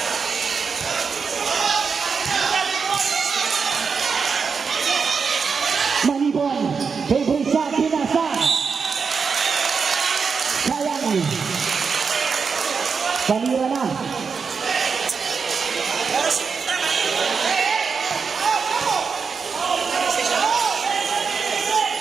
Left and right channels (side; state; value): left; quieter; 5.5 dB